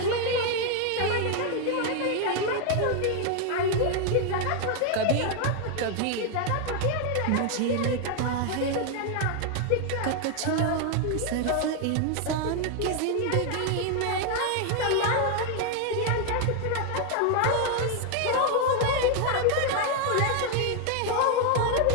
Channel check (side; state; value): both; different; correlation 0.01